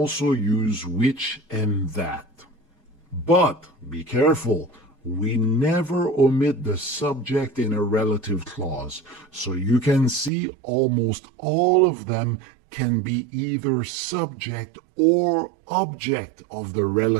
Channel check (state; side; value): drops out; left; at 10.3 s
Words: use which and that. But be careful, we never omit the subject in a relative clause. So you can see almost all of them can be either subject or object of the